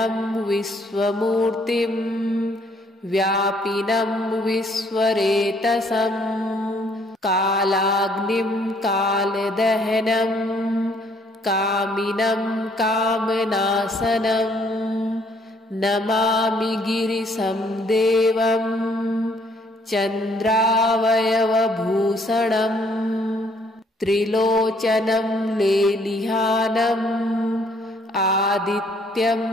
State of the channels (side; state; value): both; normal; correlation 0.65